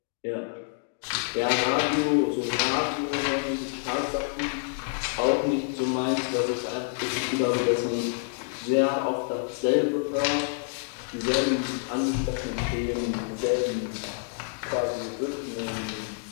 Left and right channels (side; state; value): right; silent; digital silence